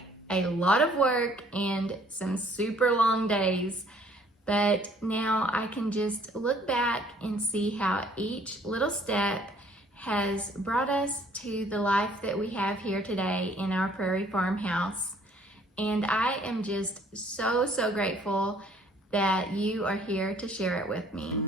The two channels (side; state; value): both; normal; correlation 0.60